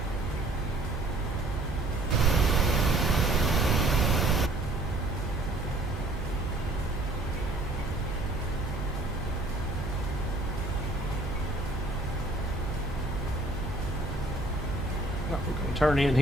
We're going to turn in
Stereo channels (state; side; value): noise; right; hum, 6 dB below the sound